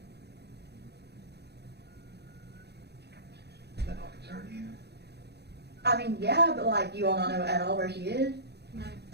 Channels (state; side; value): late; left; 0.48 ms